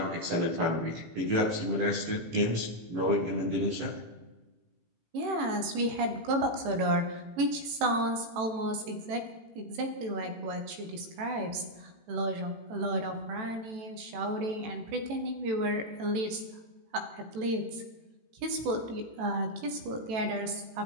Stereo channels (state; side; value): late; left; 18 ms